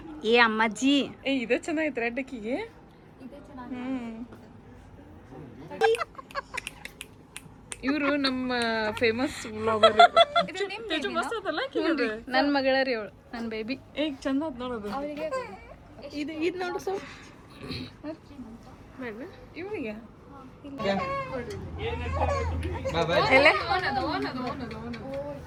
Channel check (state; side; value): identical; both; correlation 1.00